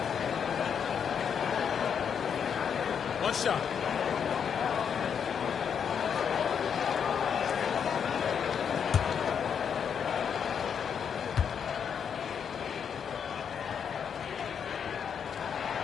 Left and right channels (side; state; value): right; quieter; 7.4 dB